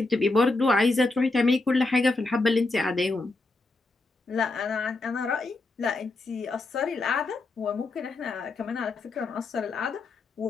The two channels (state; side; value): quieter; right; 3.3 dB